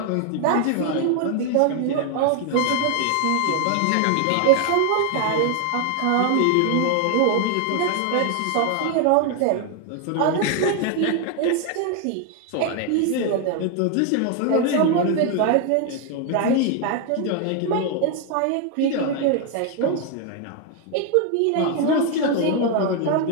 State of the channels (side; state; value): both; different; correlation 0.01